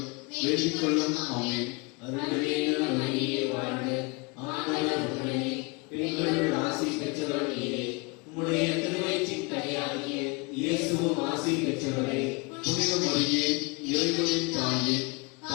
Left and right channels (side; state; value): right; quieter; 28.8 dB